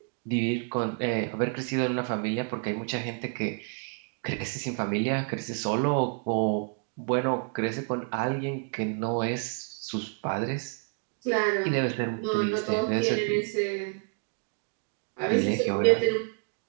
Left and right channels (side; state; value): left; quieter; 39.8 dB